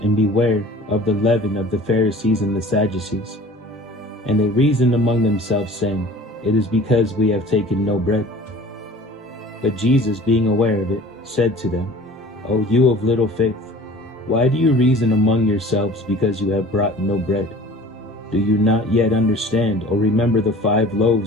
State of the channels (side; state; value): both; normal; correlation 0.44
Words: and beware of the leaven of the Pharisees and the Sadducees. And they reasoned among themselves, saying, It is because we have taken no bread. But Jesus, being aware of it, said to them, O you of little faith, why do you reason among yourselves because you have brought no bread? Do you not yet understand or remember the 5